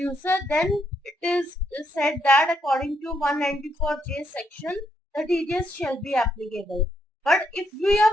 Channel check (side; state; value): both; normal; correlation 0.77